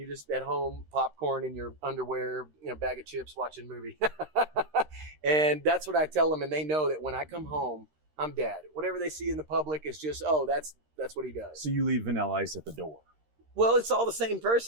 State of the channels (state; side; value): late; left; 13 ms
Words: just at home, popcorn in your underwear, bag of chips, watching a movie. And that's what I tell them. And they know that when I come home, I'm dad. Whatever they see in the public is just, that's what he does. So you leave Vanilla Ice at the door. Well, it's all the same